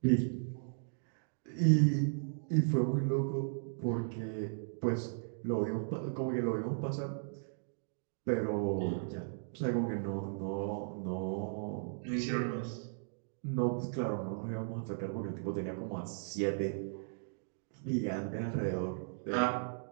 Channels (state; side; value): silent; left; digital silence